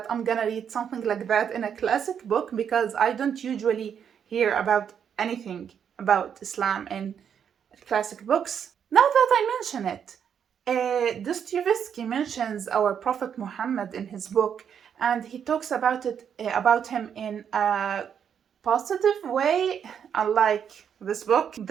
I'm gonna read something like that in a classic book, because I don't usually hear about anything about Islam in classic books. Now that I mention it, Dostoevsky mentions our Prophet Muhammad in his book, and he talks about him in a positive way, unlike this book.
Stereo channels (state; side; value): quieter; left; 8.0 dB